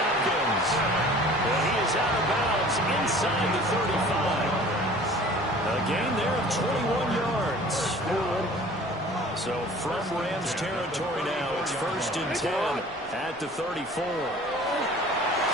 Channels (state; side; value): normal; both; correlation 0.47